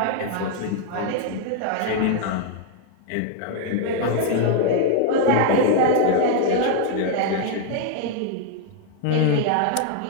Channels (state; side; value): different; both; correlation 0.00